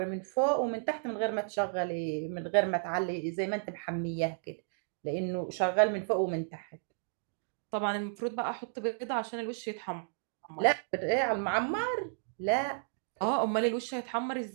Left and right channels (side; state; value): left; silent; digital silence